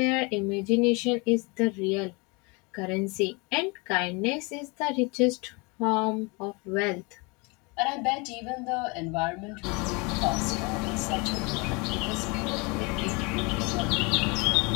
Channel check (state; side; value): quieter; right; 28.8 dB